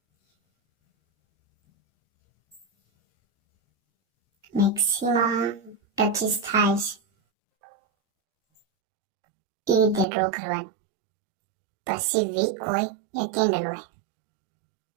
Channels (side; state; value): left; drops out; at 10.1 s